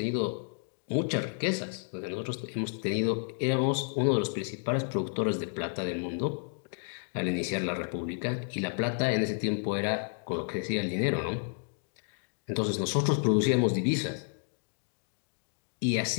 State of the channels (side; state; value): right; silent; 57 dB below the other